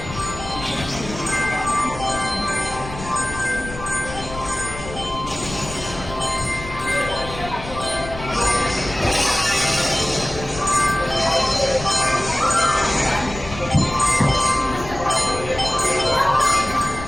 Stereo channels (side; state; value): left; noise; rumble, 11 dB below the sound